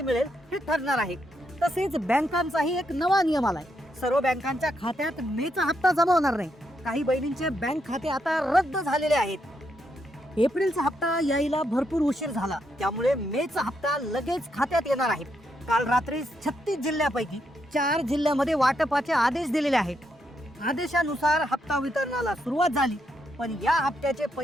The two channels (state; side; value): normal; both; correlation 0.79